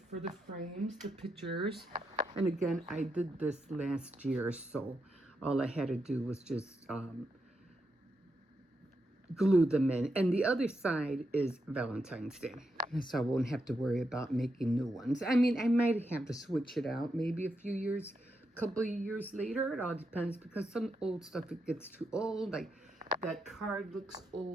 the frames, the pictures. And again, I did this last year, so all I had to do was just glue them in. And the other side is Valentine's Day, so I won't have to worry about making new ones. I mean, I might have to switch it out maybe a few years, couple of years later. It all depends, because some old stuff, it gets too old. Like that card looks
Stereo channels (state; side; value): normal; both; correlation 0.84